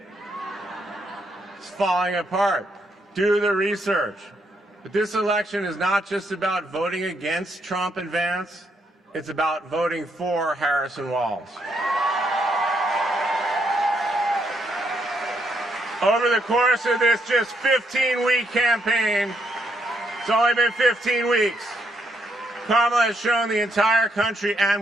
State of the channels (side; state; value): both; normal; correlation 0.76